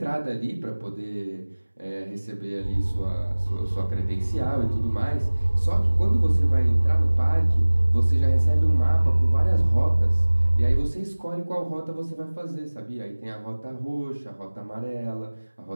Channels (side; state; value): both; inverted; correlation -1.00